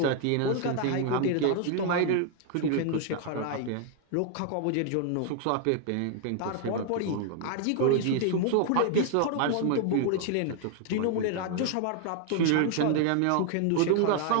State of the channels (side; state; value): both; different; correlation 0.00